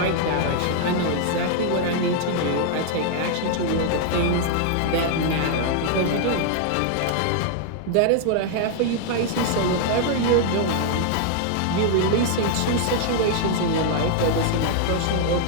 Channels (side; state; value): both; different; correlation 0.00